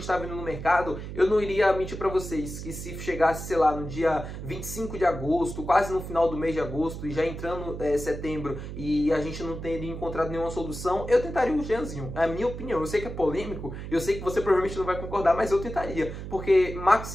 está vendo no mercado, eu não iria mentir para vocês que se chegasse, sei lá, no dia 25 de agosto, quase no final do mês de agosto, e já entrando setembro, e a gente não teria encontrado nenhuma solução, eu tentaria o Jeanzinho. É a minha opinião. Eu sei que é polêmico, eu sei que você provavelmente não vai concordar, mas eu tentaria. Porque Marcos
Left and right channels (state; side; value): noise; right; hum, 8 dB below the sound